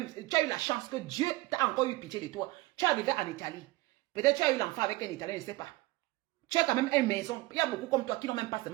la chance que Dieu t'a encore eu pitié de toi. Tu es arrivé en Italie. Peut-être tu as eu l'enfant avec un Italien, je ne sais pas. Tu as quand même une maison. Il y a beaucoup comme toi qui n'ont même pas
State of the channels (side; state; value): left; quieter; 20.4 dB